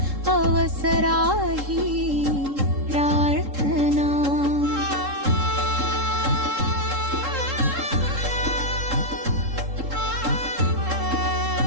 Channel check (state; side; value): late; left; 3.7 ms